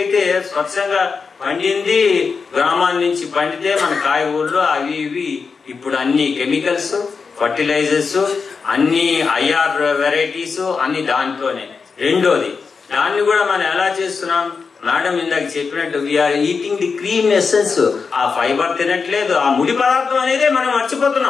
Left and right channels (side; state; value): right; quieter; 5.2 dB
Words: స్వచ్ఛంగా పండింది గ్రామాల నుంచి పండితే మన కాయగూరలు అవి ఇవి. ఇప్పుడు అన్ని కెమికల్స్, ఫర్టిలైజర్స్, అన్ని ఐఆర్ వెరైటీస్ అన్ని దాంట్లోనే. రెండోది, దాన్ని కూడా మనం ఎలా చేస్తున్నాం? మేడం ఇందాక చెప్పినట్టు we are eating the cream essence. ఆ ఫైబర్ తినట్లేదు, ఆ ముడి పదార్థం అనేది మనం